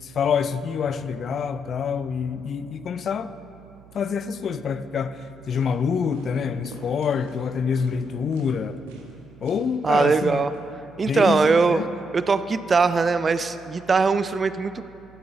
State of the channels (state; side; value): noise; right; hum, 24 dB below the sound